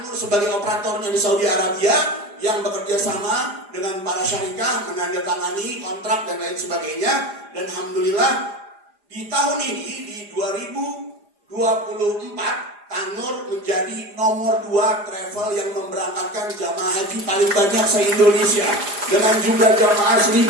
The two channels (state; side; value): late; left; 4.9 ms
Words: sebagai operatornya di Saudi Arabia yang bekerja sama dengan para syarikat, menandatangani kontrak dan lain sebagainya. Dan alhamdulillah di tahun ini, di 2024, Tanur menjadi nomor 2 travel yang memberangkatkan jamaah haji paling banyak se-Indonesia dengan jumlah jamaah